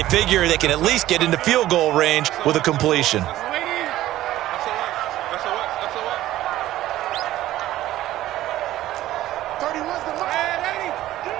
figure they can at least get into field goal range with a completion.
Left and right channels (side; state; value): left; quieter; 14.6 dB